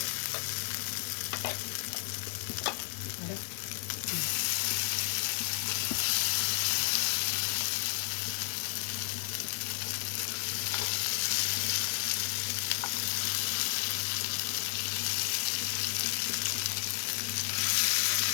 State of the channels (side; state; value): right; silent; digital silence